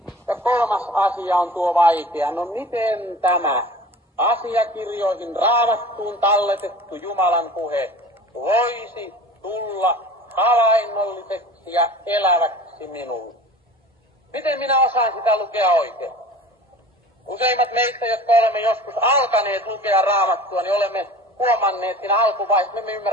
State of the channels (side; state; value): both; normal; correlation 0.41